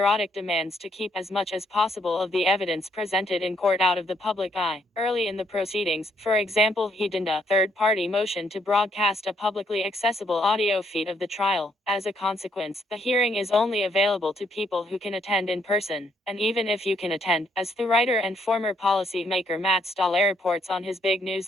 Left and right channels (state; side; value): normal; both; correlation 0.71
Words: demands to keep as much as possible of the evidence presented in court out of the public eye. Early in the proceedings, for example, he denied a third-party motion to broadcast a publicly accessible audio feed of the trial. As a consequence, the hearing is only available to people who can attend in person. And even if you can attend, as the writer and former policymaker Matt Stoller reports on his big